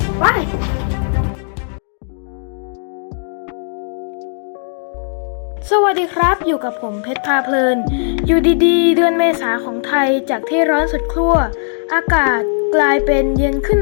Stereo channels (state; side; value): silent; right; digital silence